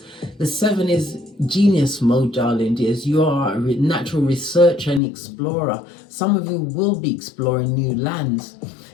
The 7 is genius mode, darling dears. You are a natural researcher and explorer. Some of you will be exploring new lands.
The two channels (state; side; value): drops out; right; at 5.0 s